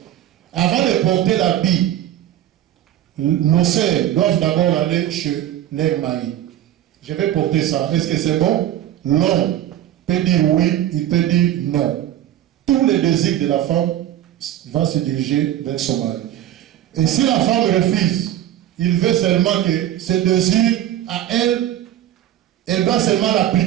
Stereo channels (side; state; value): left; quieter; 12.2 dB